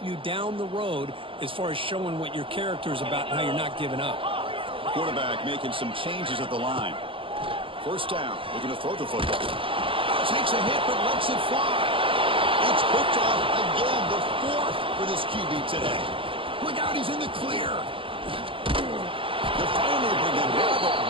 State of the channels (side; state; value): left; late; 0.25 ms